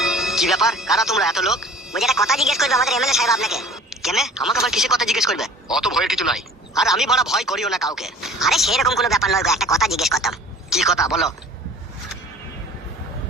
কি ব্যাপার, কারা তোমরা এত লোক? বলছি একটা কথা জিজ্ঞেস করবে আমাদের এমএলএ সাহেব আপনাকে। কেন আমাকে আবার কিসে কথা জিজ্ঞেস করবে? অত ভয়ের কিছু নাই। আর আমি বড় ভয় করিও না কাউকে। আরে সেরকম কোনো ব্যাপার নয় গো, একটা কথা জিজ্ঞেস করতাম। কি কথা বলো?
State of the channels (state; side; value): normal; both; correlation 0.47